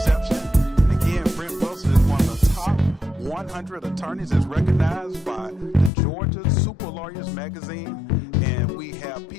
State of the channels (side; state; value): right; drops out; at 5.9 s